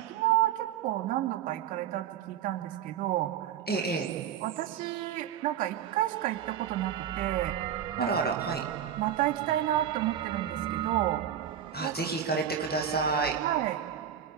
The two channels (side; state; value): left; quieter; 9.3 dB